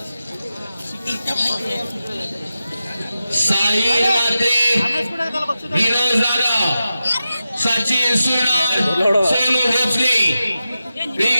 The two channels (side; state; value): both; inverted; correlation -0.92